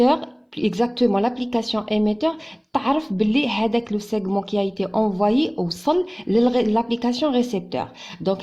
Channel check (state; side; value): identical; both; correlation 1.00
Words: exactement l'application émetteur, تعرف بلي هذاك لو سيغمون qui a été envoyé وصل l'application récepteur.